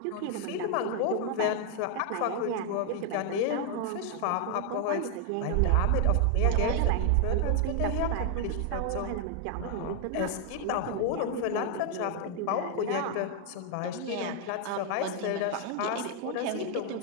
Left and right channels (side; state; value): both; different; correlation 0.00